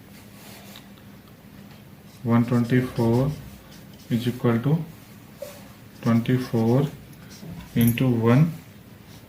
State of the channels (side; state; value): both; identical; correlation 1.00